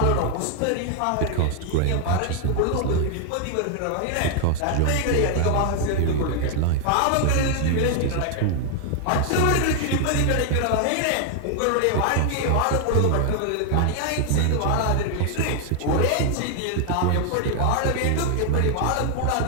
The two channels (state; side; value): different; both; correlation 0.00